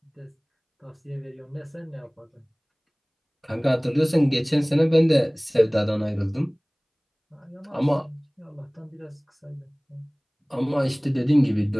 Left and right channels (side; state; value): both; identical; correlation 1.00